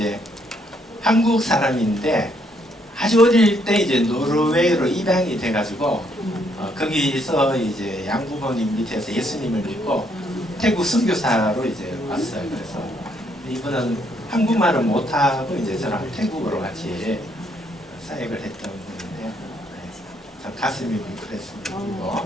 한국 사람인데 아주 어릴 때 이제 노르웨이로 입양이 돼가지고 거기서 이제 양부모님 밑에서 예수님을 믿고 태국 선교사로 이제 왔어요. 그래서 이분은 한국말은 못하고 이제 저랑 태국어로 같이 사역을 했던 분인데 참 가슴이 뭉클했습니다.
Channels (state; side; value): normal; both; correlation 0.71